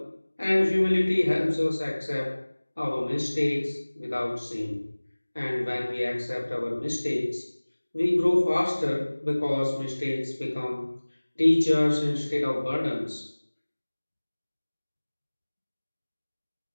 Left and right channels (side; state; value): both; inverted; correlation -1.00